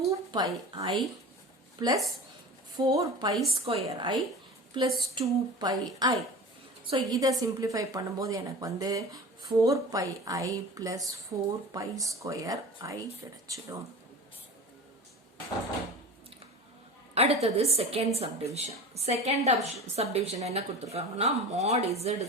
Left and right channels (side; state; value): both; normal; correlation 0.34